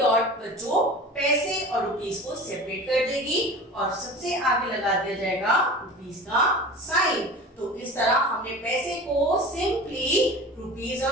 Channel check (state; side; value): normal; both; correlation 0.36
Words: बच्चों पैसे और रुपीस को सेपरेट कर देगी और सबसे आगे लगा दिया जाएगा रुपीस का साइन। तो इस तरह हमने पैसे को सिंपली रुपीस